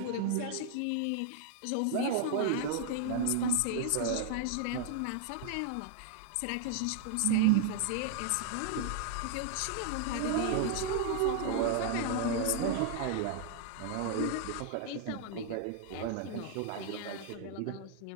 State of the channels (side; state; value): both; different; correlation 0.00